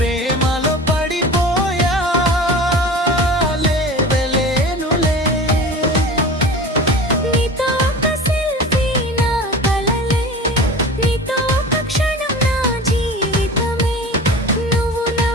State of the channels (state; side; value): normal; both; correlation 0.36